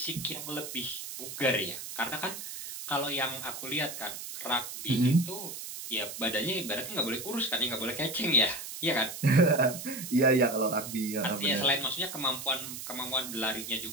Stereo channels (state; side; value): noise; right; hiss, 8 dB below the sound